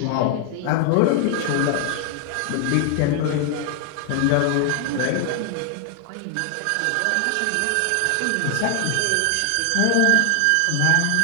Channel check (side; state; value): both; different; correlation 0.00